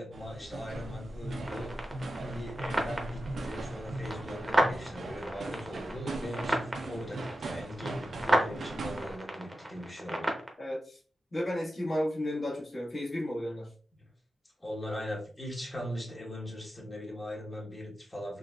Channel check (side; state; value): both; normal; correlation 0.92